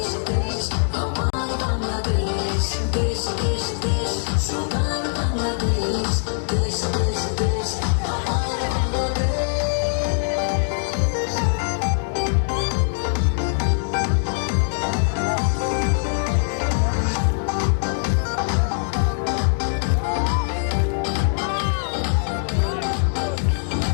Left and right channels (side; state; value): right; silent; digital silence